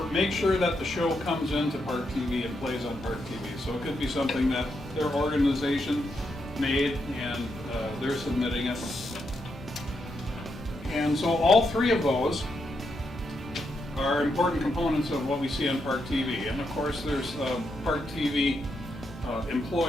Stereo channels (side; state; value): both; normal; correlation 0.82